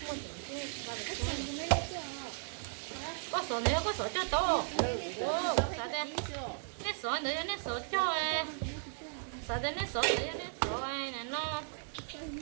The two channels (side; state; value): left; silent; digital silence